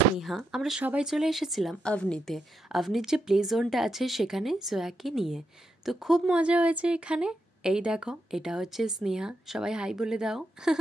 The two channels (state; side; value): normal; both; correlation 0.83